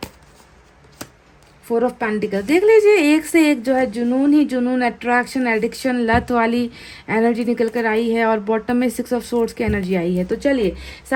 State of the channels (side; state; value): both; identical; correlation 1.00